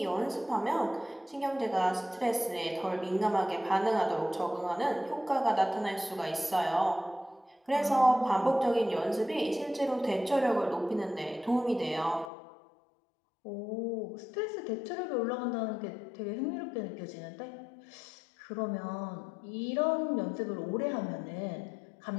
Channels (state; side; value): drops out; right; at 12.3 s